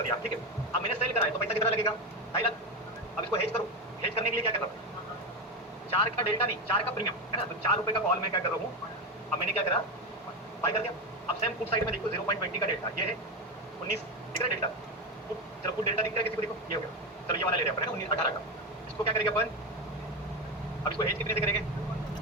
दिया, ठीक है। अब मैंने सेल करा है तो पैसा कितना लगेगा? 2.5 लाख। अब इसको हेज करो। हेज करने के लिए क्या कर रहा हूँ? 4 का डेल्टा नहीं, 4 का प्रीमियम, है ना। तो 4 रुपए का कॉल मैं क्या कर रहा हूँ? अब मैंने क्या करा? बाय कर दिया। अब सेम पुट साइड में देखो 0.20 का डेल्टा, ये है 19 दिख रहा है डेल्टा। चलो पुट डेल्टा दिख रहा है किसी को? देखो ये हो गया। चलो ये वाला ले रहे हैं अपन, 19 18 का। इसको क्या करेंगे अपन? अब इसको हेज कितने से करेंगे?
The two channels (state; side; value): normal; both; correlation 0.15